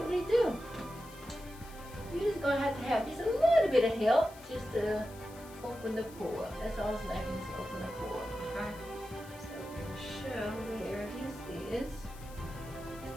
do. You're just gonna have just a little bit of help just to open the pore. That's all it's lacking is open the pore, okay? So we're gonna show where this is.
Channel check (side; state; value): left; noise; hiss, 20 dB below the sound